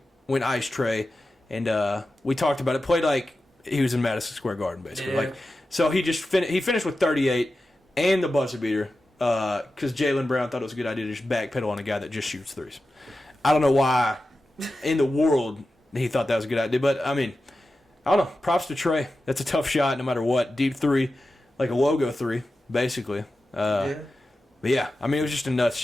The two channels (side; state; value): both; normal; correlation 0.93